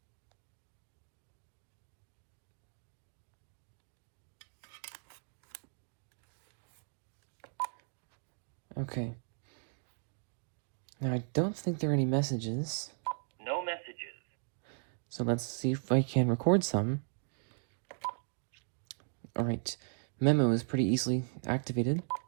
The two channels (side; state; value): left; silent; 53 dB below the other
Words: Okay. Now I don't think there are any messages. No messages. So let's see if I can record some. Alright, memo is pretty easily activated.